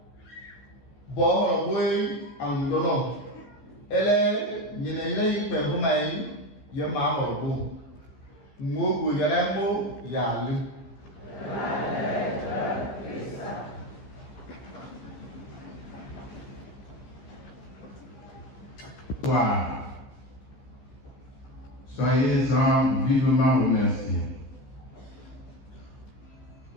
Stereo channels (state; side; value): late; right; 15 ms